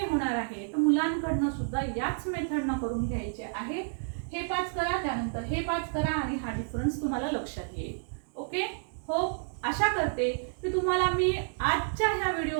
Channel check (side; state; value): left; silent; digital silence